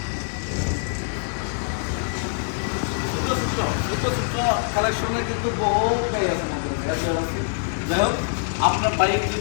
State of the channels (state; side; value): silent; right; 62 dB below the other